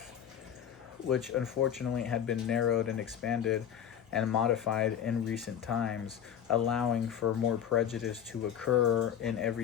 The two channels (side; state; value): right; quieter; 9.2 dB